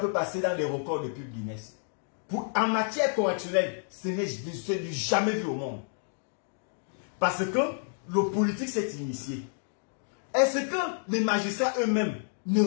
passer dans les records de pub Guinness. En matière correctionnelle, ce n'est jamais vu au monde. Parce que le politique s'est initié. Est-ce que les magistrats eux-mêmes ne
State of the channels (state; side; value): silent; right; digital silence